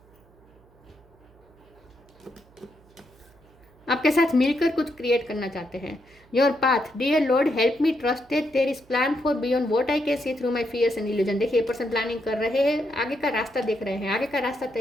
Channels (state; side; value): noise; right; hum, 28 dB below the sound